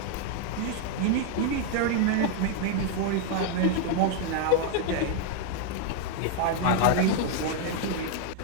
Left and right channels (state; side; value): different; both; correlation 0.00